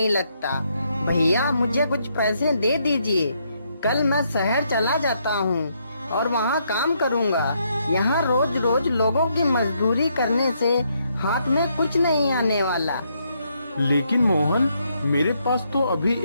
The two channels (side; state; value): both; inverted; correlation -0.75